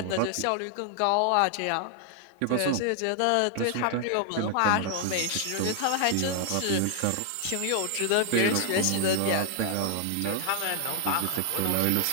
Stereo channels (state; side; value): different; both; correlation 0.00